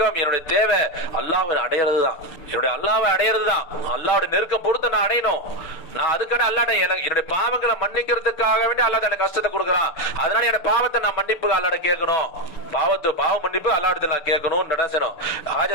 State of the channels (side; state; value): right; late; 6.7 ms